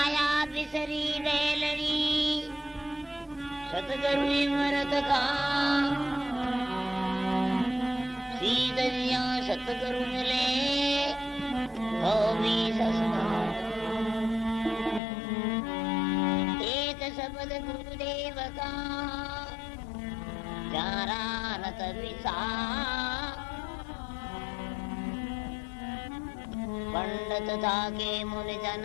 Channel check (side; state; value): right; drops out; at 15.0 s